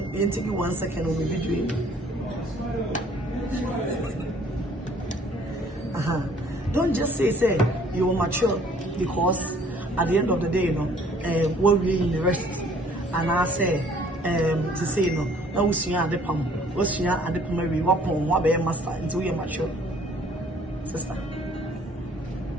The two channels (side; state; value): both; normal; correlation 0.57